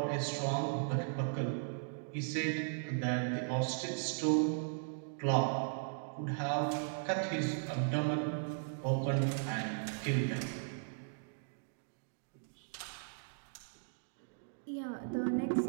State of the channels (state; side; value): silent; left; digital silence